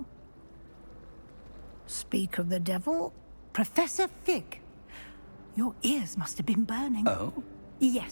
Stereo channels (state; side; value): inverted; both; correlation -1.00